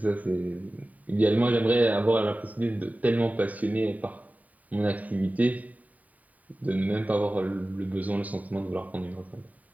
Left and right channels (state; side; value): late; left; 0.072 ms